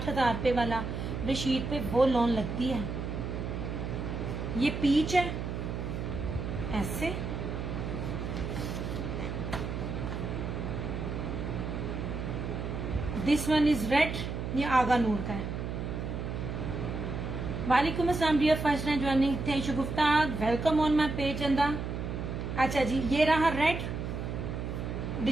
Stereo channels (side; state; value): right; noise; hum, 4 dB below the sound